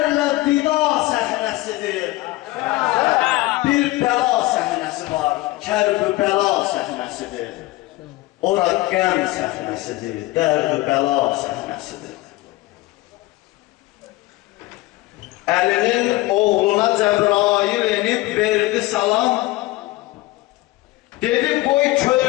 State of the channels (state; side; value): quieter; right; 19.1 dB